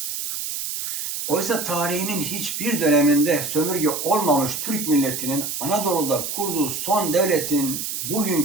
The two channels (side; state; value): right; noise; hiss, 4 dB below the sound